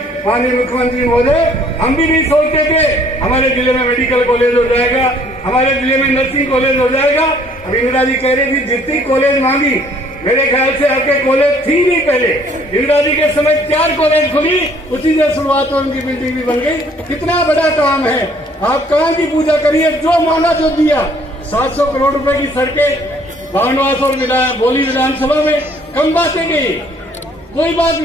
माननीय मुख्यमंत्री महोदय हम भी नहीं सोचते थे हमारे जिले में मेडिकल कॉलेज हो जाएगा, हमारे जिले में नर्सिंग कॉलेज हो जाएगा। अब इंदिरा जी कह रही थी जितनी कॉलेज मांगी, मेरे ख्याल से आपके कॉलेज थी नहीं पहले, इंदिरा जी के समय 4 कॉलेज खुली, उसी से शुरुआत उनकी बिल्डिंग भी बन गई। कितना बड़ा काम है, आप कहाँ की पूजा करिए, जो माना जो दिया। 700 करोड़ रुपए की सड़कें बामनवास और बोली विधानसभा में कम बातें गई, कोई बात,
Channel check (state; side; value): normal; both; correlation 0.60